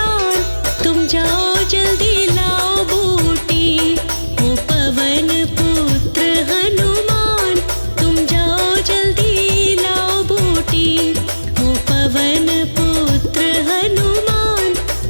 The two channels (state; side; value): inverted; both; correlation -1.00